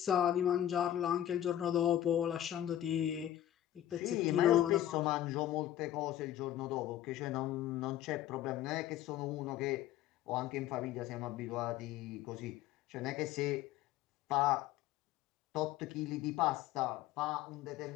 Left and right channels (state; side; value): quieter; right; 12.3 dB